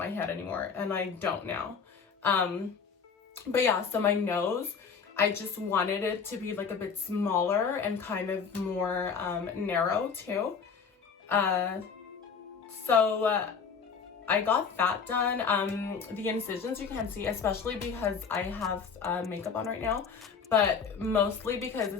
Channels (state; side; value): quieter; right; 6.0 dB